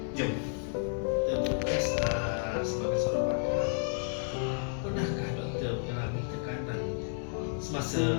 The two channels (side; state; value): right; silent; digital silence